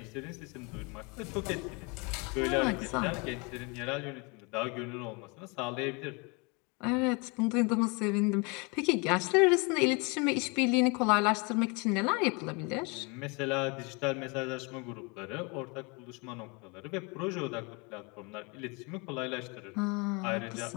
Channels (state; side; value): quieter; right; 30.2 dB